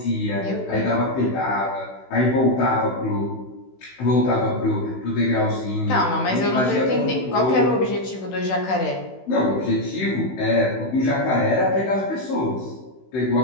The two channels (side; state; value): right; late; 16 ms